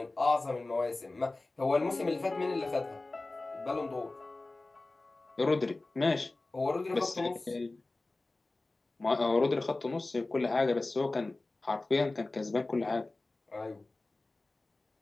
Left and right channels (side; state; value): right; quieter; 3.1 dB